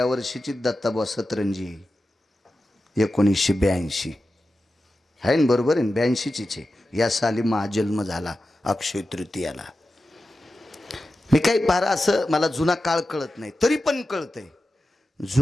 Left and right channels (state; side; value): normal; both; correlation 0.92